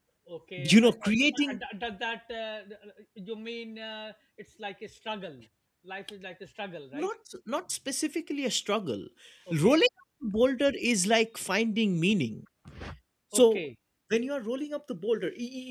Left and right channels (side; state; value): both; identical; correlation 1.00